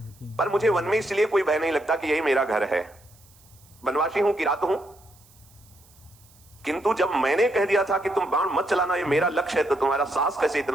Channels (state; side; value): noise; right; hiss, 28 dB below the sound